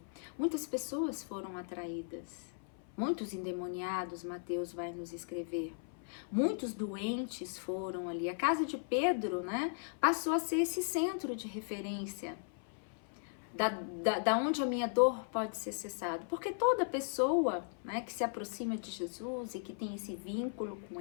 muitas pessoas foram atraídas, muitos endemoniados, Mateus vai nos escrever, muitos doentes foram ali. A casa de Pedro, né, passou a ser esse centro de referência, da onde a minha dor pode ser cessada, porque toda pessoa, né, que se aproxima de Jesus e que tem esse vínculo com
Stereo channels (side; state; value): right; silent; 53 dB below the other